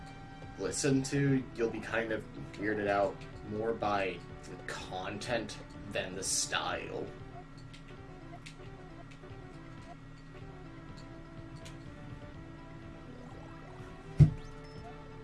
listen to, you'll be kind of weirded out more by the content than the style.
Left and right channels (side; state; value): both; identical; correlation 1.00